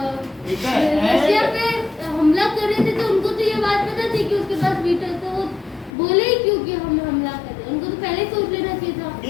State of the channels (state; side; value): drops out; right; at 5.9 s